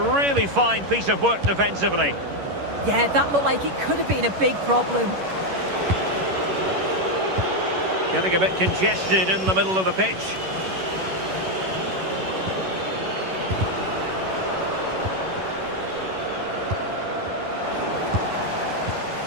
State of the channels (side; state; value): left; late; 11 ms